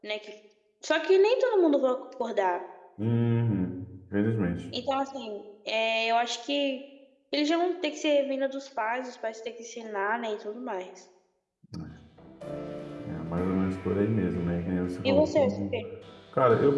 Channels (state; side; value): identical; both; correlation 1.00